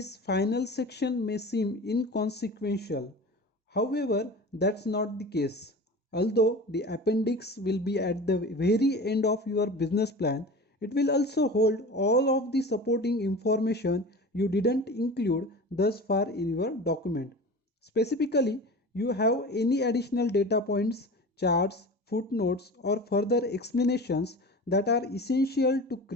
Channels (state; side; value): normal; both; correlation 0.34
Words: final section may seem inconsequential. However, that's not the case. Although the appendix will be at the very end of your business plan, it will also hold all of the supporting information you didn't include thus far in your document. Specifically, you have any additional data points, charts, footnotes, or further explanations that are essential to